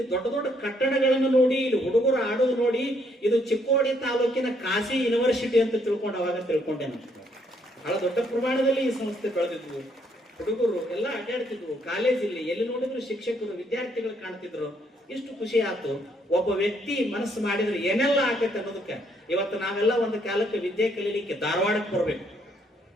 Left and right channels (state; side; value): normal; both; correlation 0.70